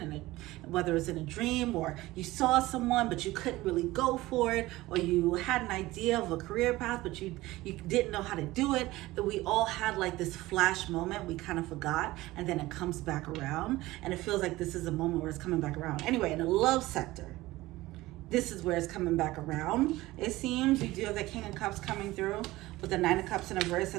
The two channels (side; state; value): left; quieter; 18.3 dB